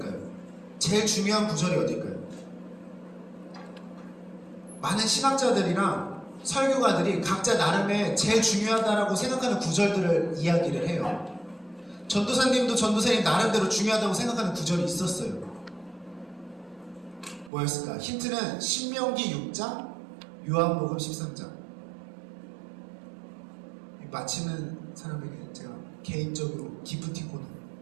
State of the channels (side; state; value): left; drops out; at 17.5 s